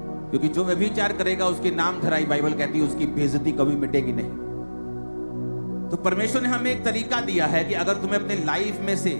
क्योंकि जो व्यभिचार करेगा उसके नाम धराई, बाइबल कहती है उसकी बेइज्जती कभी मिटेगी नहीं। तो परमेश्वर ने हमें एक तरीका दिया है कि अगर तुम्हें अपने लाइफ में से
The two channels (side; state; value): both; inverted; correlation -1.00